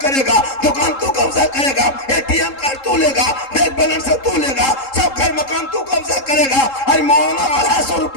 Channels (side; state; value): right; late; 3.7 ms